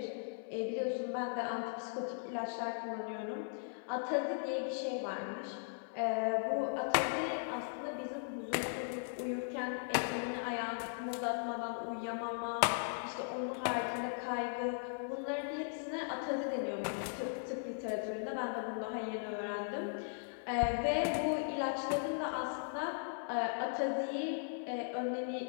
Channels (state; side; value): silent; right; digital silence